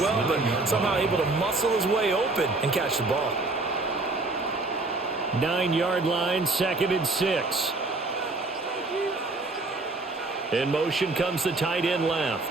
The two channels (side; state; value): left; quieter; 3.3 dB